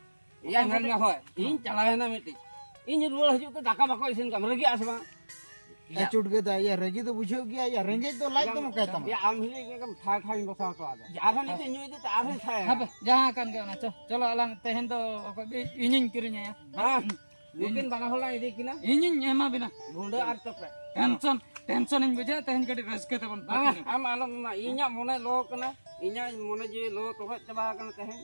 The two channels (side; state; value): both; inverted; correlation -1.00